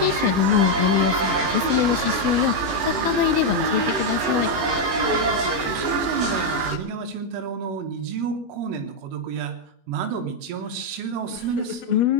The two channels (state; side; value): late; left; 21 ms